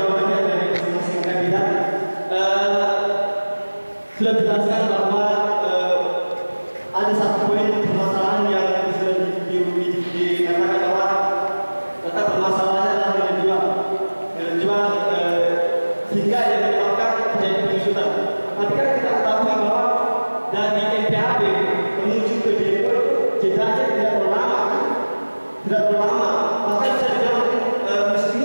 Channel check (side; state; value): both; inverted; correlation -1.00